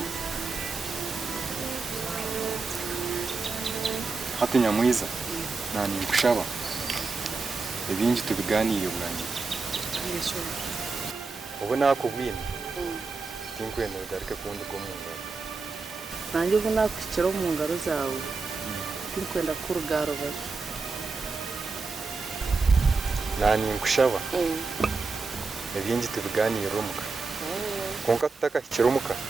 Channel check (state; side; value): quieter; left; 4.2 dB